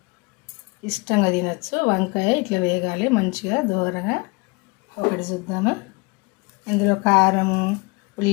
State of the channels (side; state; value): right; quieter; 27.8 dB